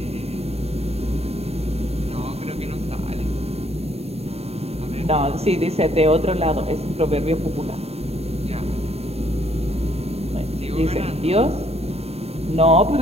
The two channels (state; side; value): late; left; 0.30 ms